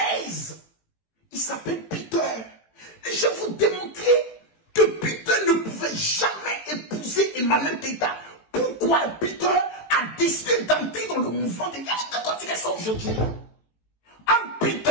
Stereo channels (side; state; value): right; late; 18 ms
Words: il s'appelle Peter. Et je vais vous démontrer que Peter ne pouvait jamais épouser Emmanuel Keita. Pourquoi Peter a décidé d'entrer dans le mouvement des gars qui continuent ça aujourd'hui? En